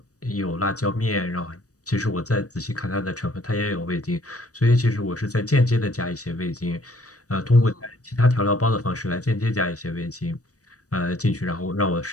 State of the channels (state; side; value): late; right; 0.66 ms